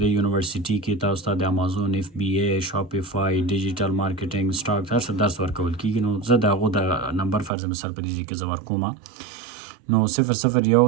یونیورسټي کې تاسو ته د امازون FBA شاپیفای ډیجیټل مارکیټینګ سټاک هر څه درس ورکول کېږي. نو زه د هغو د نمبر فرض مثال په دې ځای کې زه ورکوم. نو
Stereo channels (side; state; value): left; drops out; at 7.5 s